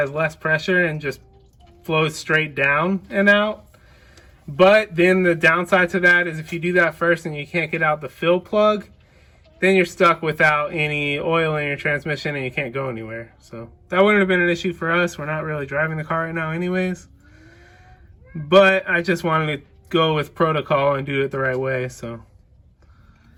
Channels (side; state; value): both; identical; correlation 1.00